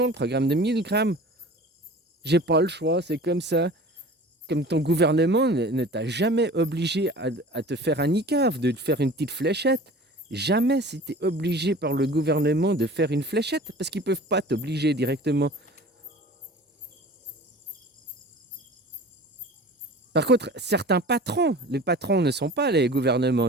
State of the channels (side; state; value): both; normal; correlation 0.41